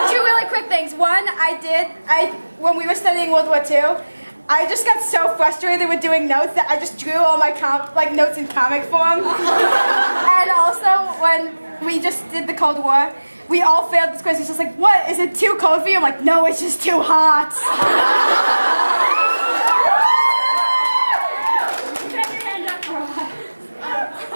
really quick things. One, when we were studying World War II, I just got so frustrated with doing notes that I just drew all my notes in comic form. And also, when we just did the Cold War, we all failed this quiz. It's just like, what? Is it too cold for you? I'm like, no, it's just too hot.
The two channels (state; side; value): inverted; both; correlation -1.00